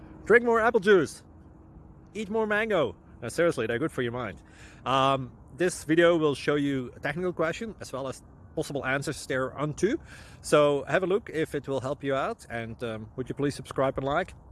Drink more apple juice. Eat more mango. No, seriously, they're good for your mind. This video will show you a technical question as well as possible answers thereunto. So have a look if it will help you out, and would you please subscribe and like?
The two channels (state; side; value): identical; both; correlation 1.00